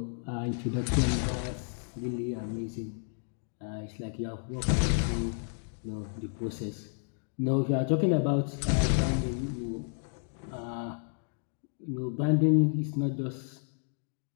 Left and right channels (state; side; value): silent; right; digital silence